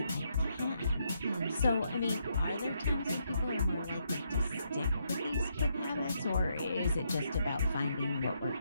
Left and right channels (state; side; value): inverted; both; correlation -0.77